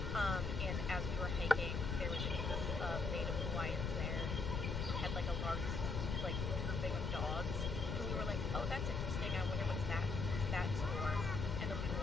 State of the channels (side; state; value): left; noise; rumble, 1 dB below the sound